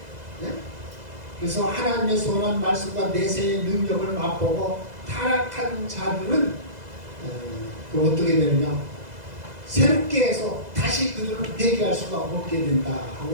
네? 그래서 하나님의 선한 말씀과 내세의 능력을 맛보고 타락한 자들은 어떻게 되느냐, 새롭게 해서 다시 그들을 회개할 수가 없게 된다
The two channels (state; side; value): late; left; 2.0 ms